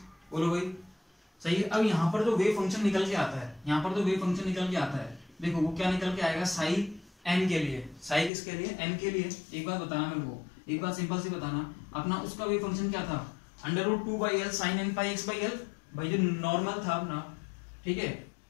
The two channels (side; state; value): right; drops out; at 8.3 s